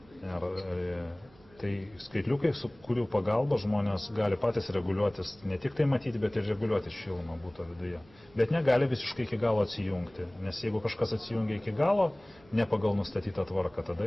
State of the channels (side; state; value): right; noise; hum, 27 dB below the sound